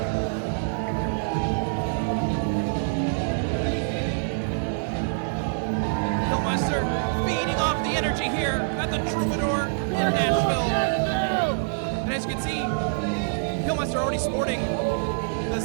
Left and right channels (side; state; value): left; silent; 59 dB below the other